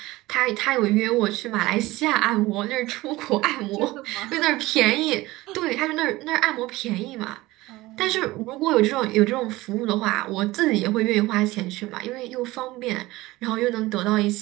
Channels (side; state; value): left; quieter; 19.1 dB